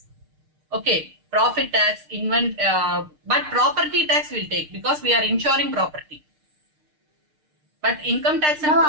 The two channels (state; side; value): late; left; 6.6 ms